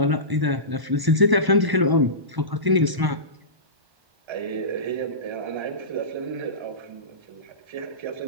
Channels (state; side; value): late; left; 1.0 ms